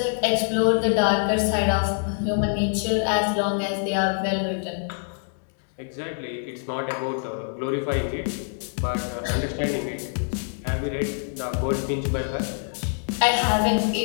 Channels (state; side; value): silent; right; digital silence